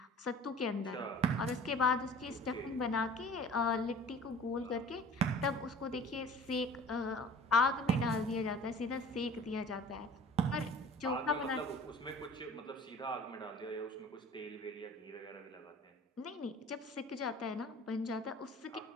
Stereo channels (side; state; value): both; normal; correlation 0.45